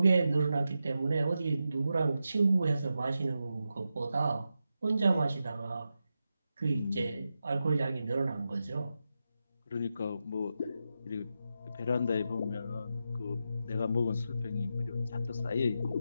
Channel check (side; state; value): both; inverted; correlation -0.89